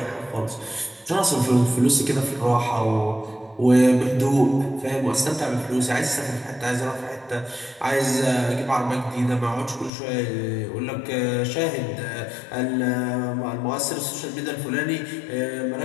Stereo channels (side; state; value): right; drops out; at 9.9 s